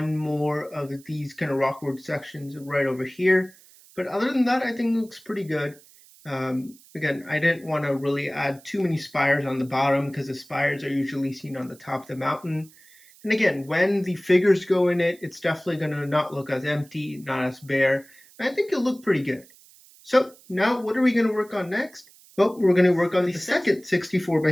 more of these kind of rockwood sections right over here. But other than that, I think it looks pretty good. Again, I didn't want to really add too many spires on the bottom because the spires are usually seen on the top of the mountain. And again, when the figures go in it, it's definitely going to not look as empty, not as bare. And I think it'll look pretty good. So now what are we going to work on next? Well, we're going to work on the second 64 by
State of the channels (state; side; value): noise; right; hiss, 25 dB below the sound